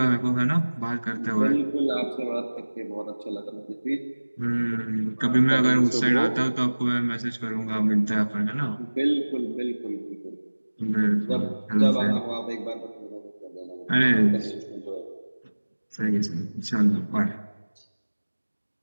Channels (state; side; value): inverted; both; correlation -1.00